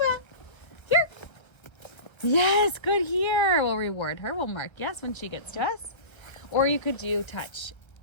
here. Yes, good here. We'll reward her. We'll mark yes when she gets to us. Or you could do touch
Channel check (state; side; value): late; right; 1.4 ms